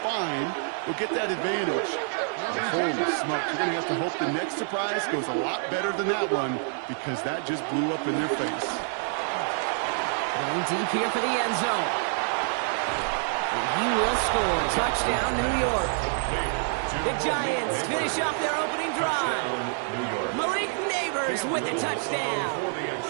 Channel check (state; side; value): silent; left; 56 dB below the other